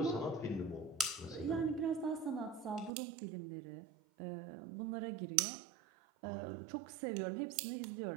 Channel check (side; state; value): left; drops out; at 2.9 s